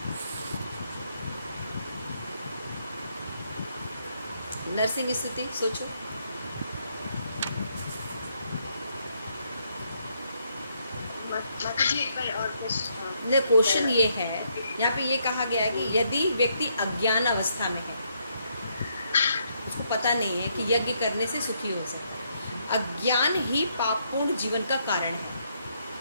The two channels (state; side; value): inverted; both; correlation -0.74